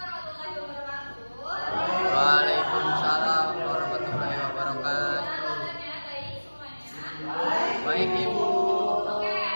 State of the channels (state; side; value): inverted; both; correlation -1.00